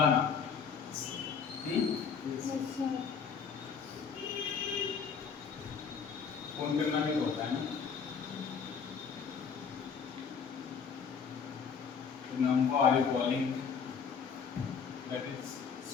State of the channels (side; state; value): right; quieter; 6.3 dB